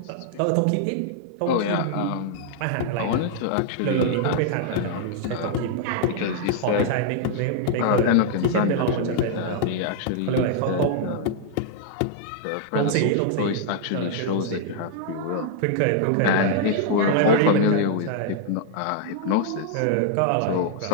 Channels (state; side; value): different; both; correlation -0.01